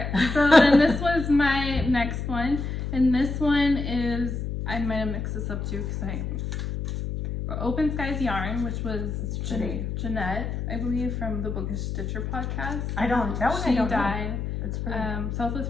so then this was my next one, and this one is, I might have mixed this up too because Open Skies Yarn, which was pretty. Jeanette, I believe, from the Bookish Stitcher podcast. That one I She don't know. died. That's pretty.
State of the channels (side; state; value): left; noise; hum, 4 dB below the sound